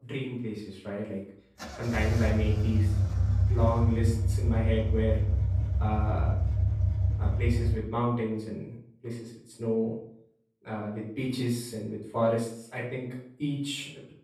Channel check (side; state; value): both; identical; correlation 1.00